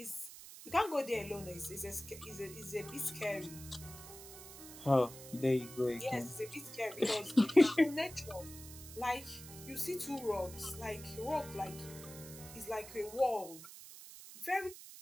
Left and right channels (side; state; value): right; noise; hiss, 14 dB below the sound